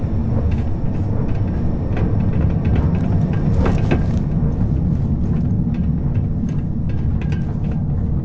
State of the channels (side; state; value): both; identical; correlation 1.00